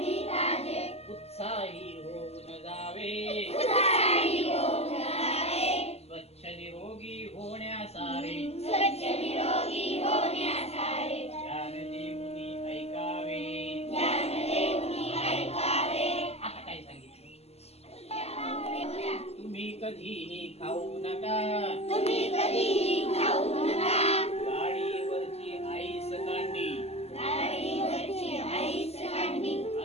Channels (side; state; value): right; late; 0.30 ms